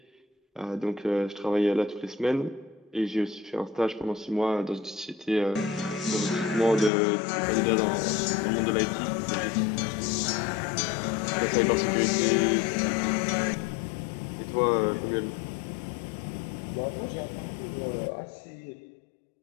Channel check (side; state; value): right; drops out; at 6.9 s